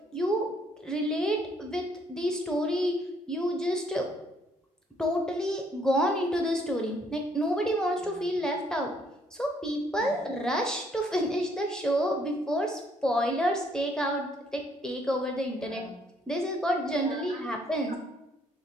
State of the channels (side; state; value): both; normal; correlation 0.67